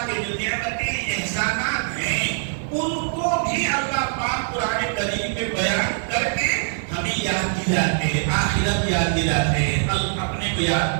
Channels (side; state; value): left; silent; digital silence